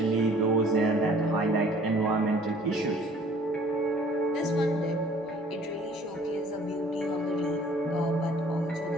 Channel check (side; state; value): both; normal; correlation 0.53